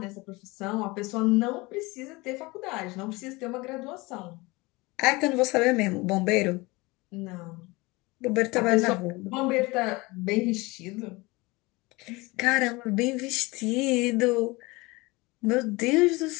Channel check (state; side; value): quieter; right; 23.4 dB